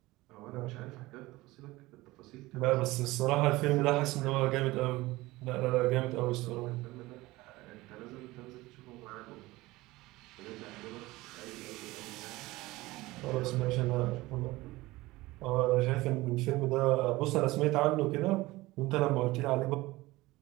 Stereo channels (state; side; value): quieter; left; 19.6 dB